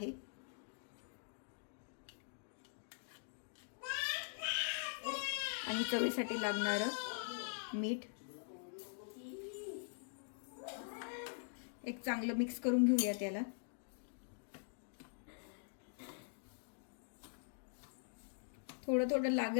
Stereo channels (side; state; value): right; silent; digital silence